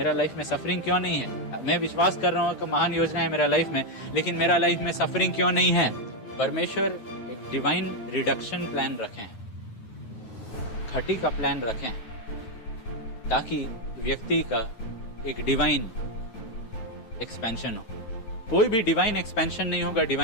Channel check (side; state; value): right; late; 9.3 ms